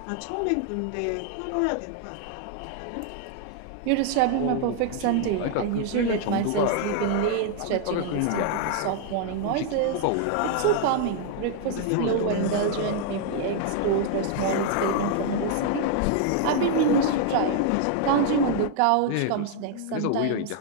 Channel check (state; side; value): different; both; correlation 0.00